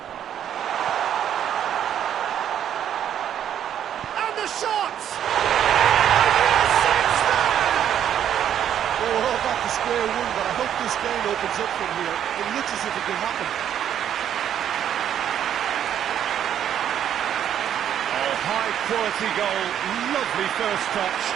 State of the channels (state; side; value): quieter; left; 9.9 dB